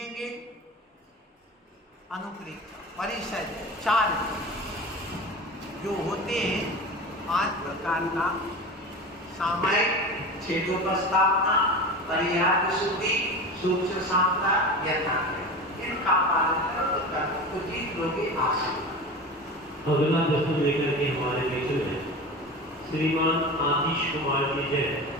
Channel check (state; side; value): normal; both; correlation 0.30